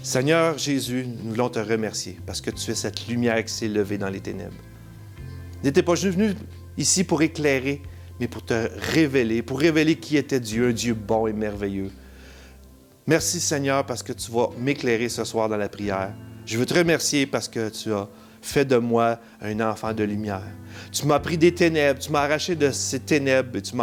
Seigneur Jésus, nous voulons te remercier parce que tu es cette lumière qui s'est levée dans les ténèbres. N'étais pas juste venu ici pour éclairer, mais pour te révéler, pour révéler qui était Dieu, un Dieu bon et merveilleux. Merci Seigneur parce que tu vas m'éclairer ce soir dans la prière. Je veux te remercier parce que tu as fait de moi un enfant de lumière. Tu m'as pris des ténèbres, tu m'as arraché de ces ténèbres et tu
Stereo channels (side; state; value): both; identical; correlation 1.00